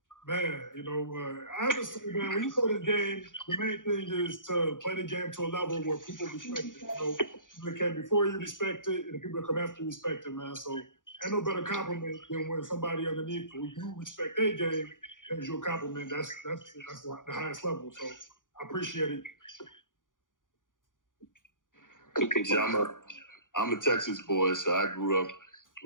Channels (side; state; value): right; late; 0.88 ms